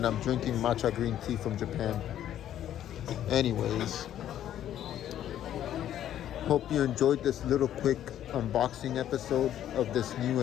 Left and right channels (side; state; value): right; quieter; 11.3 dB